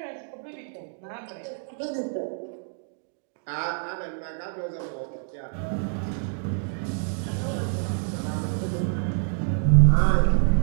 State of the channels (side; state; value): left; silent; 58 dB below the other